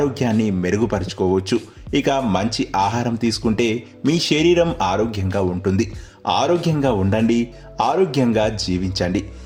మెరుగుపరుచుకోవచ్చు. ఇక మంచి ఆహారం తీసుకుంటే మీ శరీరం ఆరోగ్యంగా ఉంటుంది. ఆరోగ్యంగా ఉండండి, ఆరోగ్యంగా జీవించండి.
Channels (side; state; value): both; identical; correlation 1.00